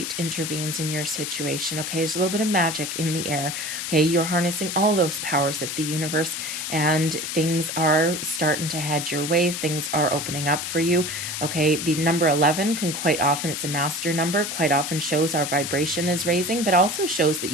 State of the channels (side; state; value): left; noise; hiss, 4 dB below the sound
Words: intervenes in your situation. Okay, there's a little bit of magic in the air. Okay, you're harnessing all those powers of the universe, and things are starting to head your way. Things are opening up for you. Okay, the number 11 can quite often, it's a master number, quite often shows our vibration is raising, but also shows that